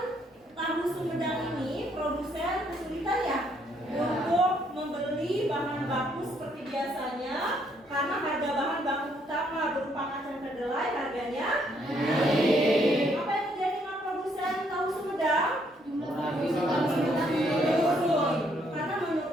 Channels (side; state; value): both; normal; correlation 0.70